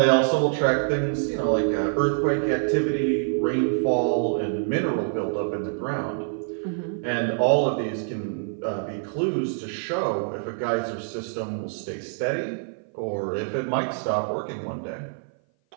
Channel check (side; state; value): left; silent; 57 dB below the other